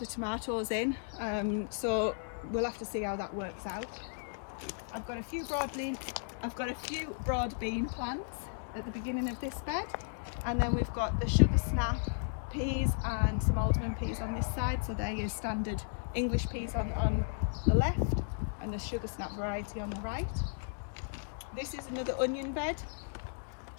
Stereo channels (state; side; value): silent; right; digital silence